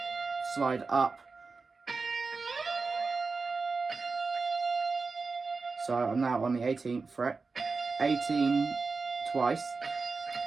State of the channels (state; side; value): quieter; left; 4.3 dB